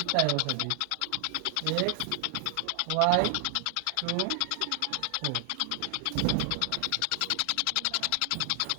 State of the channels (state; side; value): different; both; correlation 0.00